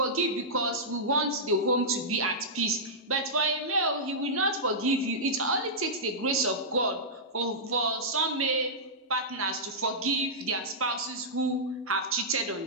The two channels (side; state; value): both; normal; correlation -0.13